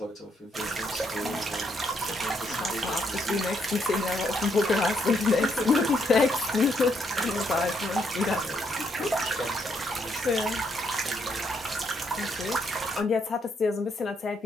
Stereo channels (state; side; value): normal; both; correlation 0.75